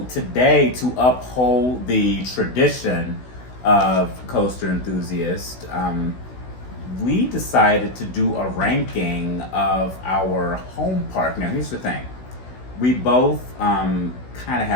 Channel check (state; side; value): late; right; 16 ms